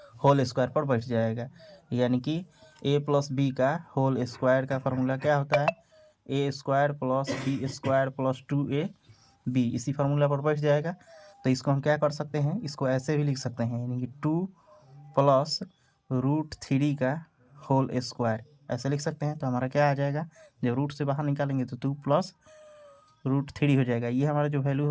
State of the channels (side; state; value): both; identical; correlation 1.00